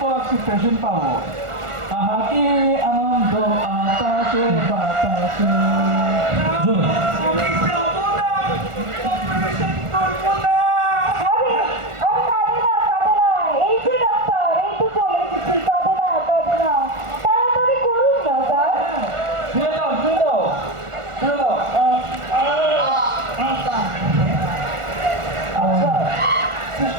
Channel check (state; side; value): late; left; 1.4 ms